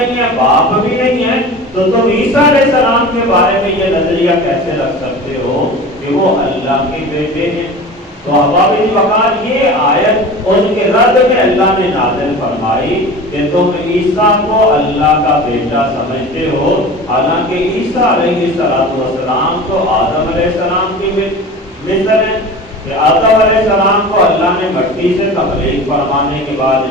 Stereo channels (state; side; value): normal; both; correlation 0.35